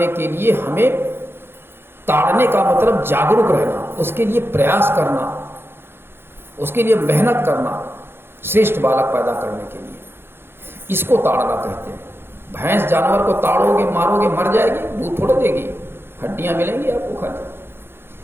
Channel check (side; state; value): left; late; 0.11 ms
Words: के लिए हमें ताड़ने का मतलब जागरूक रहना, उसके लिए प्रयास करना, उसके लिए मेहनत करना, श्रेष्ठ बालक पैदा करने के लिए। इसको ताड़ना कहते हैं। भैंस जानवर को ताड़ोगे, मारोगे, मर जाएगी, दूध थोड़ा देगी, हड्डियां मिलेंगी आपको खाने।